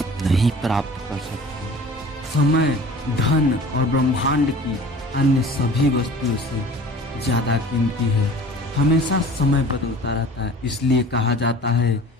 नहीं प्राप्त कर सकते। समय धन और ब्रह्मांड की अन्य सभी वस्तुओं से ज्यादा कीमती है। हमेशा समय बदलता रहता है, इसलिए कहा जाता है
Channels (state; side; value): normal; both; correlation 0.44